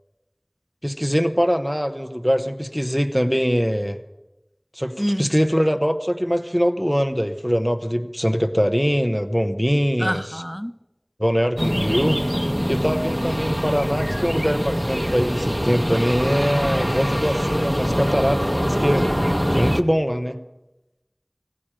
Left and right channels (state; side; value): identical; both; correlation 1.00